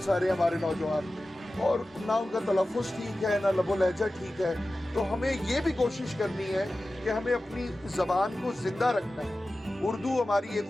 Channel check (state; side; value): normal; both; correlation 0.95